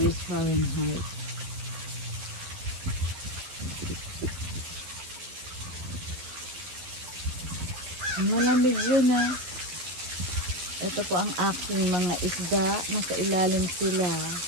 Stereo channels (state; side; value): late; left; 12 ms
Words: Fahrenheit. Malamig yun ah. Ito po ang aking mga isda. Nasa ilalim sila.